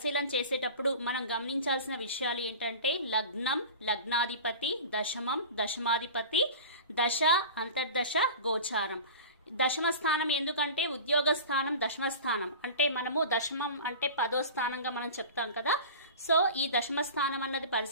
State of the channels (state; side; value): inverted; both; correlation -0.35